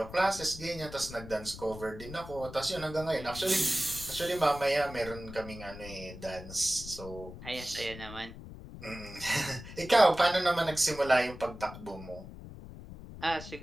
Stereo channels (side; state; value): left; noise; rumble, 13 dB below the sound